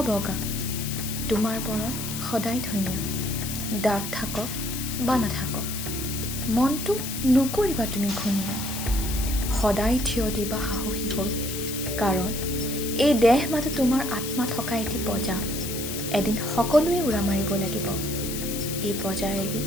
বগা, তোমাৰ বৰণ সদায় ধুনীয়া। দাগ থাকক বা নাথাকক, মনটো নকৰিবা তুমি ঘূণীয়া। সদায় থিয় দিবা সাহসী হৈ, কাৰণ এই দেহ মাথো তোমাৰ আত্মা থকা এটি বজা। এদিন সকলোৱে উৰা মাৰিব লাগিব এই বজা এৰি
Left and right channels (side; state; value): left; noise; hiss, 6 dB below the sound